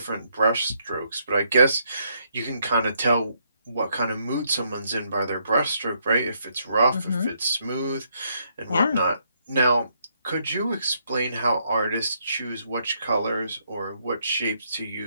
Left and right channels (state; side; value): inverted; both; correlation -0.73